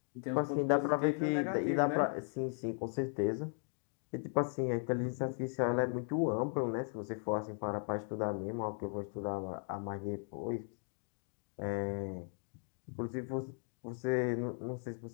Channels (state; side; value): silent; right; 53 dB below the other